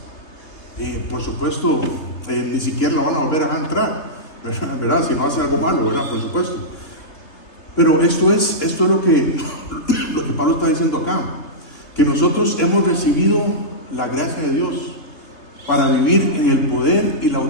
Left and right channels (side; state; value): right; late; 3.6 ms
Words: Y por supuesto, ni siquiera lo van a volver a entrar, ¿verdad? Si no hace algo malo, ¿verdad? Por supuesto. Pero esto es lo que Pablo está diciendo acá, que nosotros hemos recibido la gracia de Dios para vivir en el poder y la